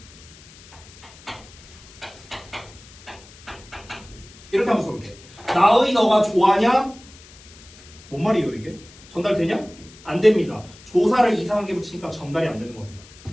이렇게 한번 써볼게. 나의 너가 좋아하냐? 뭔 말이에요 이게? 전달되냐? 안 됩니다. 조사를 이상하게 붙이니까 전달이 안 되는 겁니다.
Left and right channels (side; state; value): left; noise; hiss, 22 dB below the sound